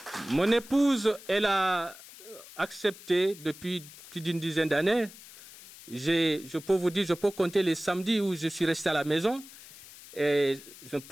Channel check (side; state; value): left; noise; hiss, 18 dB below the sound